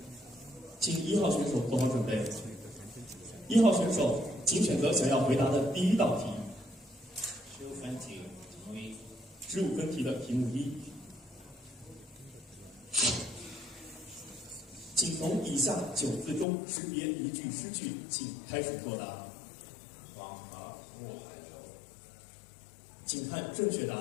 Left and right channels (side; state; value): right; drops out; at 16.4 s